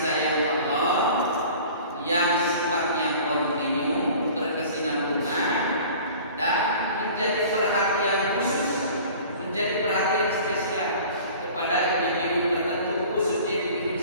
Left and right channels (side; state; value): both; inverted; correlation -0.44